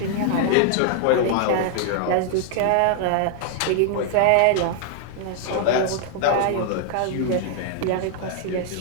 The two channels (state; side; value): different; both; correlation 0.00